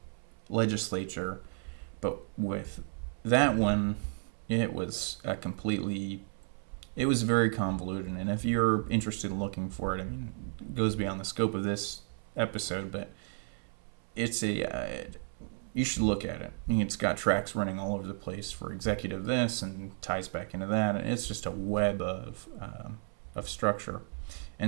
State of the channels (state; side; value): silent; left; 56 dB below the other